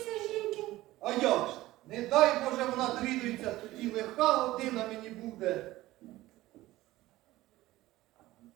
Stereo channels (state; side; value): quieter; left; 17.1 dB